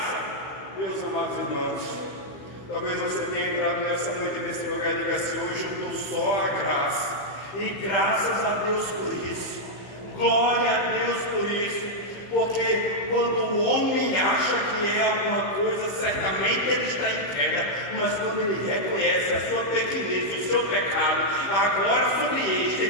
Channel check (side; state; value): right; late; 15 ms